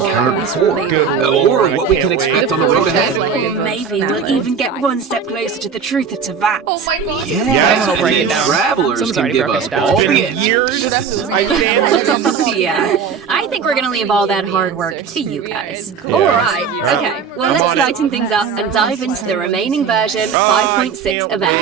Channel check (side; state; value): left; quieter; 6.3 dB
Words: before, or what we can expect on the road ahead. Or maybe we'll even get one step closer to the truth of Tavat. Yeah, I'll break it and down. travelers Someone's can already give broken us it down. all It's the been answers. years. I stand. Yeah, I think we're gonna leave all that hard work to you guys. Alright, okay, well let's lighten things up and dive into the remaining version 5.6